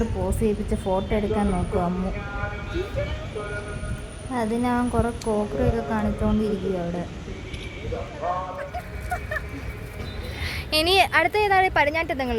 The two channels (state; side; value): identical; both; correlation 1.00